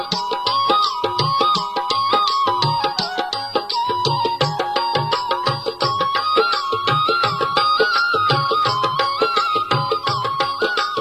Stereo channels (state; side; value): identical; both; correlation 1.00